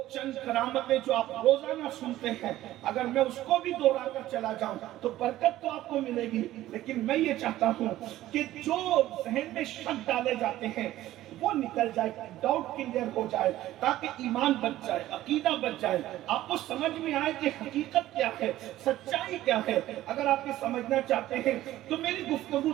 چند کرامتیں جو آپ روزانہ سنتے ہیں اگر میں اس کو بھی دوہرا کر چلا جاؤں تو برکت تو آپ کو ملے گی، لیکن میں یہ چاہتا ہوں کہ جو ذہن میں شک ڈالے جاتے ہیں وہ نکل جائے، ڈاؤٹ کلیئر ہو جائے، تاکہ ایمان بچ جائے، عقیدہ بچ جائے، آپ کو سمجھ میں آئے کہ حقیقت کیا ہے، سچائی کیا ہے۔ اگر آپ یہ سمجھنا چاہتے ہیں تو میری گفتگو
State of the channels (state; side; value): quieter; left; 14.7 dB